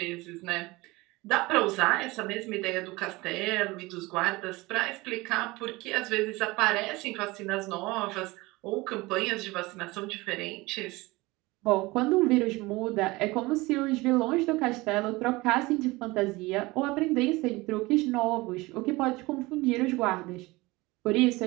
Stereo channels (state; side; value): quieter; left; 21.8 dB